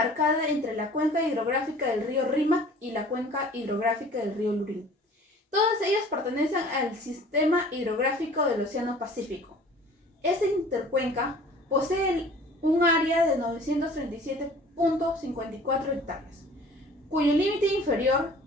entre la cuenca hidrográfica del río Rímac y la cuenca hidrográfica del río Lurín. Todas ellas pertenecen al sistema hidrográfico del Océano Pacífico. Esta intercuenca posee un área de 937.54 hectáreas, cuyo límite inferior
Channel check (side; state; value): both; normal; correlation 0.48